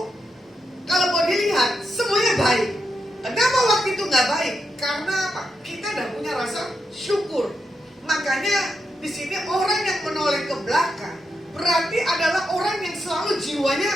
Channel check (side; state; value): both; normal; correlation 0.85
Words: kalau mau dilihat semuanya baik. Kenapa waktu itu nggak baik? Karena apa? Kita tidak punya rasa syukur. Makanya di sini orang yang menoleh ke belakang berarti adalah orang yang selalu jiwanya